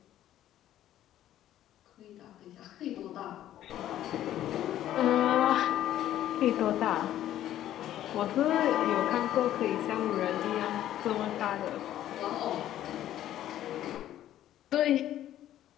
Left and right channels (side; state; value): right; quieter; 12.4 dB